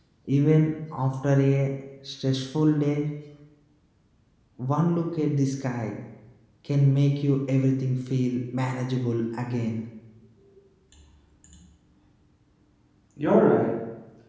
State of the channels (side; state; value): both; identical; correlation 1.00